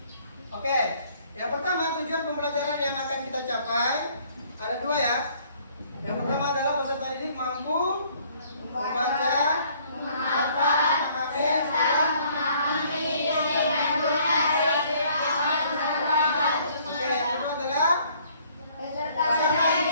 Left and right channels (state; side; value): inverted; both; correlation -0.60